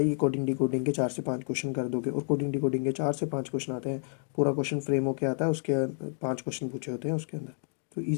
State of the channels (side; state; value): right; silent; digital silence